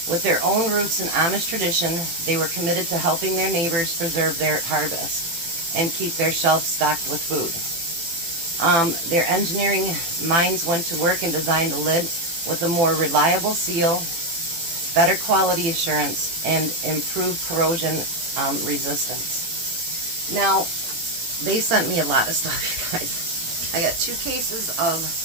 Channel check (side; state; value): left; late; 18 ms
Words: With their own roots in Amish tradition, they were committed to helping their neighbors preserve their harvests and keep their shelves stocked with food. Their engineering minds went to work and designed a lid with a more reliable seal, better quality assurance, and improved corrosion resistance. Now, they sent me a lot of stuff, you guys. I got 2 cases of